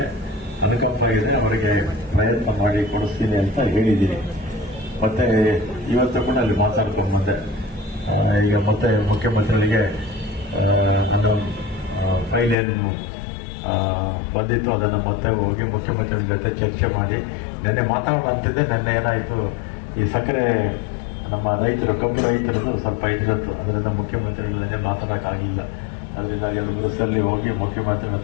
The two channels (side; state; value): right; drops out; at 12.6 s